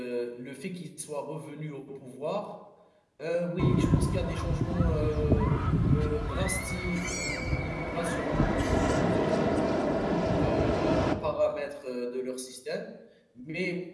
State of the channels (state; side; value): identical; both; correlation 1.00